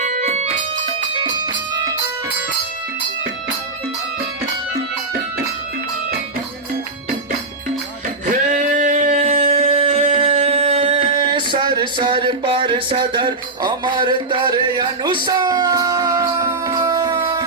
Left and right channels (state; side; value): quieter; left; 3.4 dB